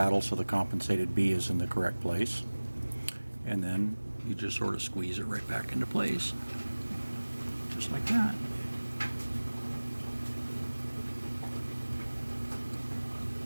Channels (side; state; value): both; inverted; correlation -1.00